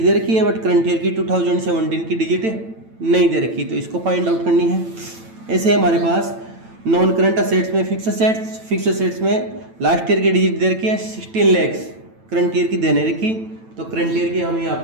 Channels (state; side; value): late; left; 9.0 ms